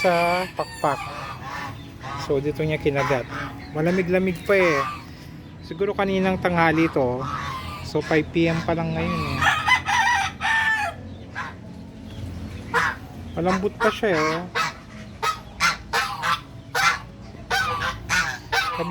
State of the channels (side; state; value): both; identical; correlation 1.00